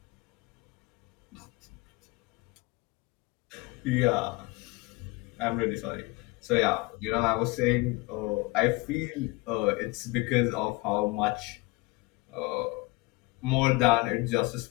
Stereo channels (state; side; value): quieter; right; 23.7 dB